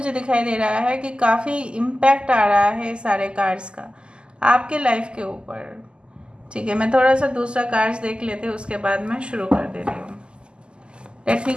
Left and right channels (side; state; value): left; late; 0.050 ms